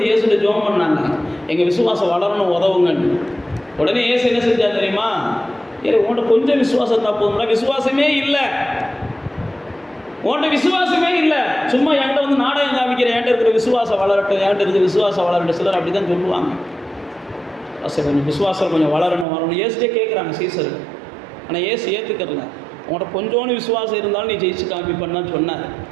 இயேசுடைய ஜெபம் பண்ணாங்க, எங்கள் விசுவாசம் வளரணும், உதவுங்கன்னு. உடனே இயேசு என்ன செஞ்சார் தெரியுமா, உன்கிட்ட கொஞ்சம் விசுவாசம் தான் போதும்னா, விசுவாசமே இல்லை, உன்கிட்ட விசுவாசமே இல்லை, சும்மா என்கிட்ட நாடகம் காமிக்கிற, என்கிட்ட இருக்கிற விசுவாசம் வளரட்டும், என்கிட்ட இருக்கிற விசுவாசம் வளரட்டும். சிலர் அப்படி தான் சொல்லுவாங்க. கொஞ்சம் விசுவாசம் கொஞ்சம் வளரணும். இயேசுட்டே கேட்குறாங்க சீசர். ஆனால் இயேசு ஏற்றுக்கிறல. உங்கள்கிட்ட கொஞ்சோன்னு விசுவாசம் இருந்தாலும் நீ ஜெயிச்சு காமிப்பேன்னு சொன்னார்.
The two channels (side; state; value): left; drops out; at 19.2 s